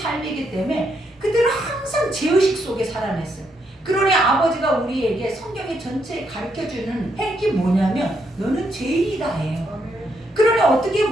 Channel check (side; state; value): both; normal; correlation 0.77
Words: 때문에 그들은 항상 죄의식 속에 살아냈어요. 그러니 아버지가 우리에게 성경의 전체에 가르쳐주는 핵이 뭐냐면 너는 죄인이다 해요. 그러니 어떻게